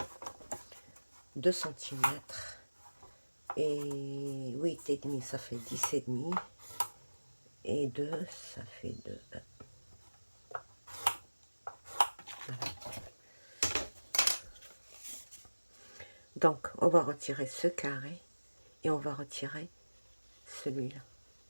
2 cm. Et 8 et demi, ça fait 10 et demi. Et 2, ça fait 2. Voilà. Donc, on va retirer ce carré et on va retirer celui-là.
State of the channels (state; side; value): inverted; both; correlation -1.00